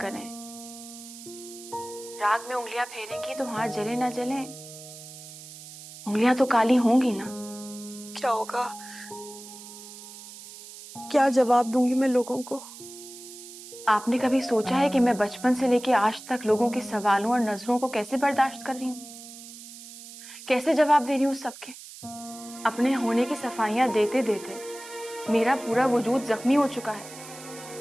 राग में उंगलियां फेरेंगी तो हाथ जले ना जले, उंगलियां तो काली होंगी ना। क्या होगा? क्या जवाब दूंगी मैं लोगों को? आपने कभी सोचा है कि मैं बचपन से लेके आज तक लोगों के सवालों और नजरों को कैसे बर्दाश्त कर रही हूँ, कैसे जवाब दे रही हूँ सबके? अपने होने की सफाइयां देते देते मेरा पूरा वजूद जख्मी हो चुका है।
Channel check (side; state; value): right; noise; hiss, 15 dB below the sound